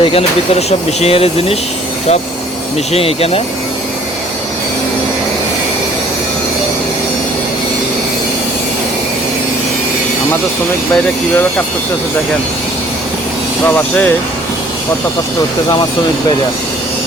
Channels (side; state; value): both; normal; correlation 0.56